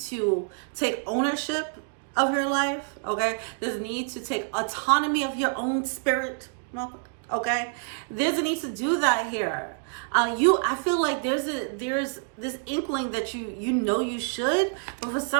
to take ownership of your life, okay? This need to take autonomy of your own spirit, okay? There's a need to do that here. I feel like there's this inkling that you know you should, but for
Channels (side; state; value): left; silent; 56 dB below the other